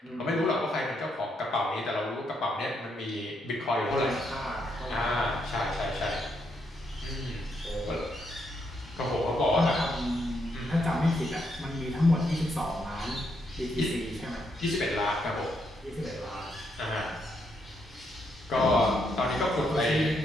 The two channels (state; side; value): normal; both; correlation 0.77